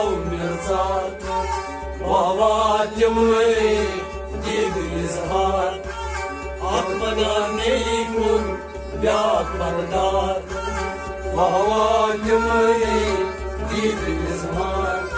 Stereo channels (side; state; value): both; identical; correlation 1.00